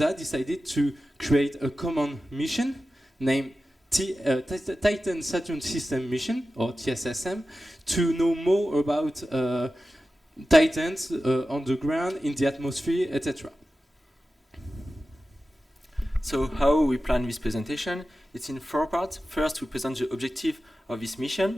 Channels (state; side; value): normal; both; correlation 0.94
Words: decided to create a common mission named Titan Saturn System Mission, or TSSM, to know more about Titans on the ground, in the atmosphere, etc. So how we plan this presentation? It's in 4 parts. First, we present the objective of this